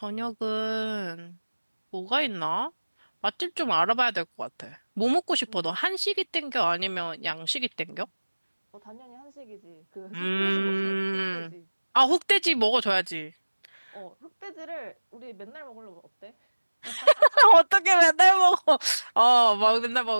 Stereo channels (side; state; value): both; inverted; correlation -1.00